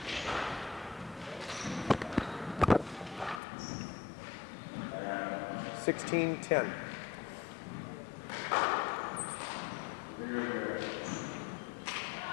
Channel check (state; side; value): drops out; right; at 3.4 s